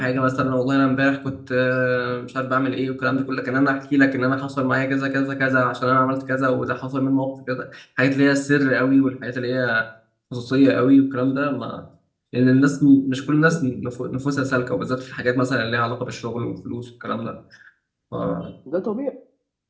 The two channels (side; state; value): both; identical; correlation 1.00